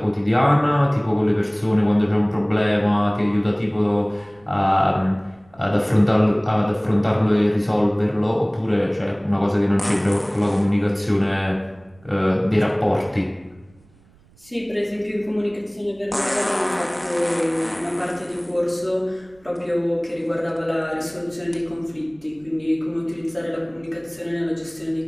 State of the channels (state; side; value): noise; right; rumble, 30 dB below the sound